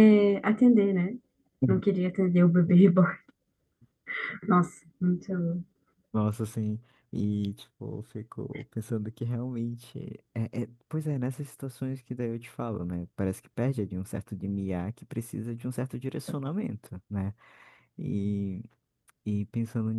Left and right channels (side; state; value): both; identical; correlation 1.00